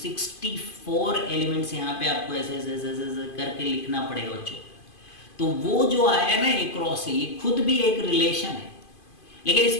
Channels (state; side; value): late; right; 2.5 ms